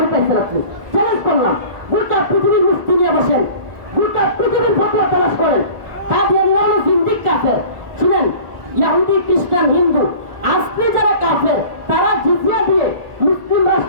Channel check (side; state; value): left; late; 1.4 ms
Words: পাইছেন আপনি? চ্যালেঞ্জ করলাম, গোটা পৃথিবীর মুফতি নিয়ে বসেন, গোটা পৃথিবীর ফতোয়া তালাশ করেন। কাদিয়ানীরা হলো জিন্দিক কাফের। শুনেন, ইহুদি, খ্রিস্টান, হিন্দু আজকে যারা কাফের, তারা জিজিয়া দিয়ে মুসলিম